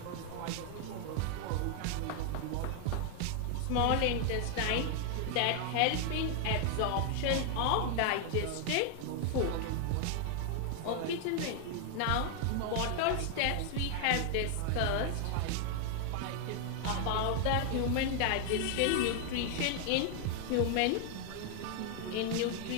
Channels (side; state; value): both; different; correlation 0.00